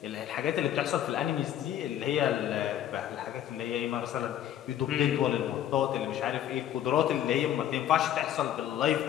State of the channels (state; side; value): quieter; right; 11.2 dB